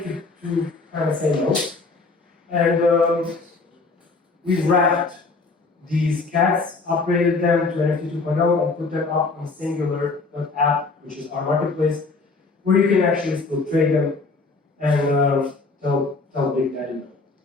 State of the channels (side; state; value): right; quieter; 3.9 dB